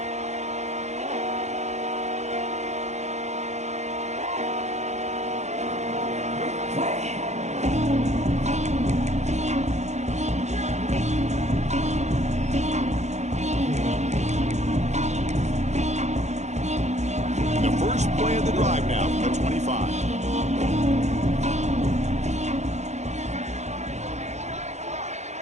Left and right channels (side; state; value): left; late; 0.33 ms